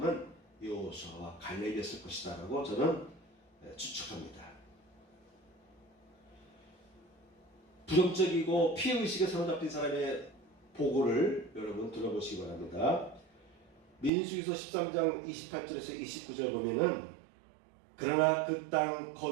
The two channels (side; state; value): left; drops out; at 14.1 s